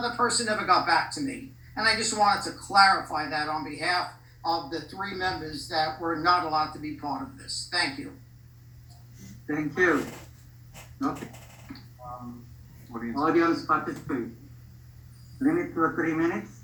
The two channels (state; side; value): identical; both; correlation 1.00